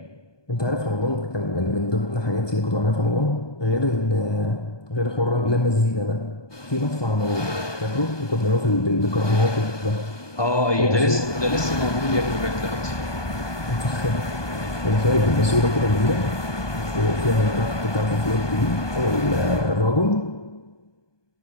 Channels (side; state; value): right; late; 1.2 ms